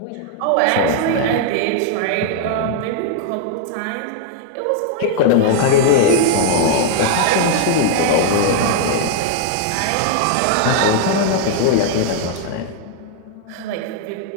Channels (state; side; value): different; both; correlation 0.00